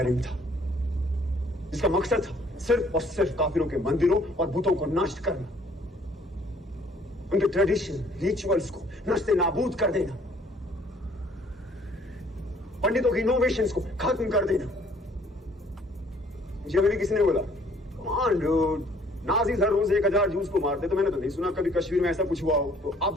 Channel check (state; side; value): normal; both; correlation 0.60